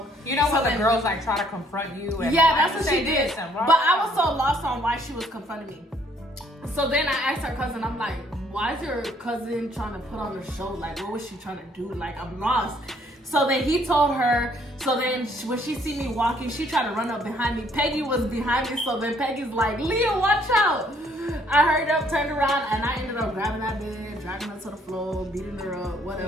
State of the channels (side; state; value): both; normal; correlation 0.65